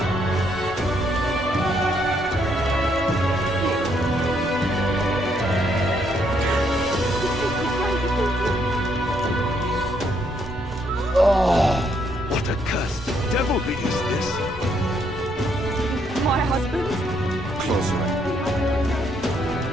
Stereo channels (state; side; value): normal; both; correlation 0.72